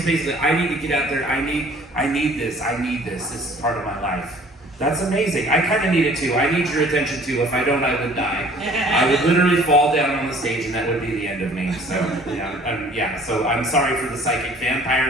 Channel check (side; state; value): both; normal; correlation 0.53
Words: basically, I need to get out there. I need this. This is part of my life. That's amazing. I kind of need it too. I need your attention too. If I don't, I would die. I would literally fall down on the stage, and that would be the end of me. So yeah. So I'm sorry for the psychic